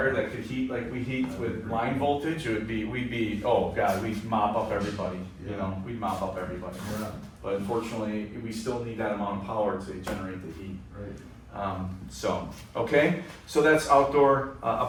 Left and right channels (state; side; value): identical; both; correlation 1.00